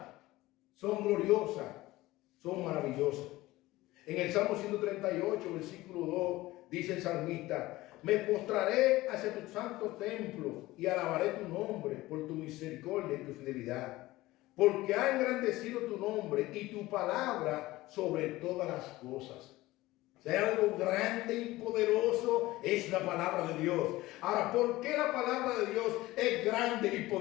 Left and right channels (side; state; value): right; quieter; 18.2 dB